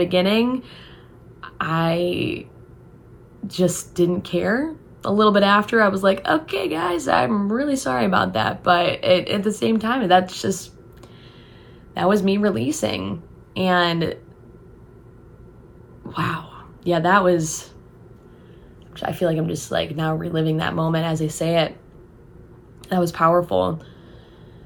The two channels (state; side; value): identical; both; correlation 1.00